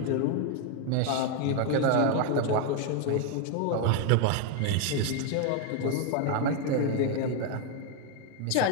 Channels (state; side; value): different; both; correlation 0.01